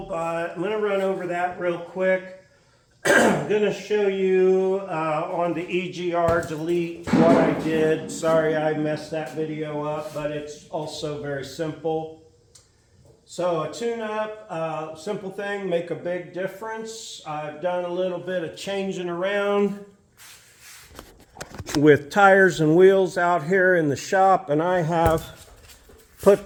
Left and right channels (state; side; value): identical; both; correlation 1.00